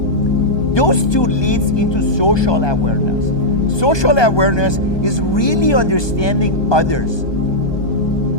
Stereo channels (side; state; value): right; late; 1.2 ms